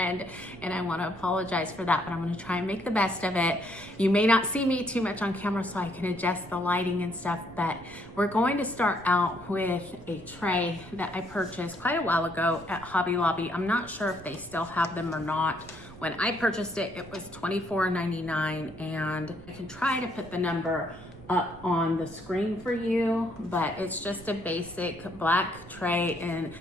and I want to apologize for that, but I'm going to try and make the best of it. You may not see me too much on camera, so I can adjust the lighting and stuff, but we're going to start out with a tray that I purchased quite a while ago at Hobby Lobby. I'm not sure if they still have them or not. When I purchased it, it was $24.99, and I can try to put the number up on the screen for you, but it's just a basic black tray and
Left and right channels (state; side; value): noise; right; rumble, 19 dB below the sound